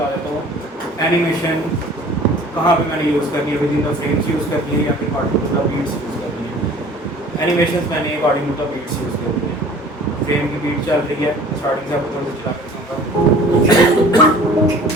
देता हूँ एनिमेशन कहाँ पे मैंने यूज़ करनी है, within the frames use करनी है या फिर according to the beats use करनी है। एनिमेशन मैंने according to the beats use करनी है। फ्रेम की बीट चल रही है, स्टार्टिंग से आपको थोड़ा सा चला कर दिखाऊंगा।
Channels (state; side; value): normal; both; correlation 0.47